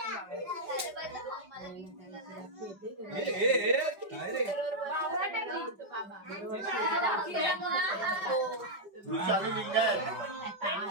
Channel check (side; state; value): left; late; 5.3 ms